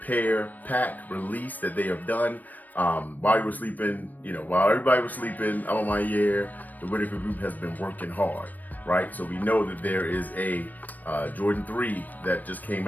pack release that they have done. While you were sleeping, while everybody was sleeping, A Ma Maniere, the Whitaker Group has been working hard, right? So we know that there is a Jordan 3 that just came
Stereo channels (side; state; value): right; late; 0.084 ms